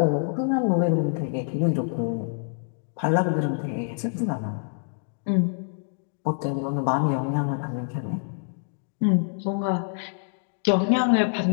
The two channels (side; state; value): right; silent; 61 dB below the other